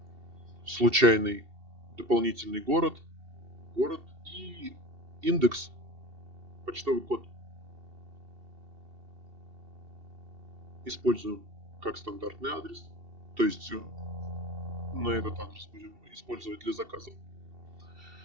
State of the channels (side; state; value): left; late; 2.7 ms